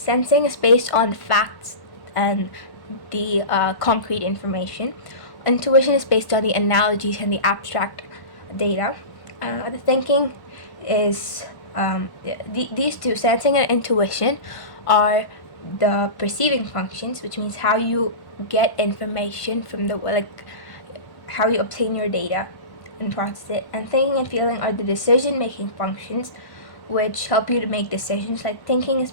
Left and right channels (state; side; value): late; right; 1.1 ms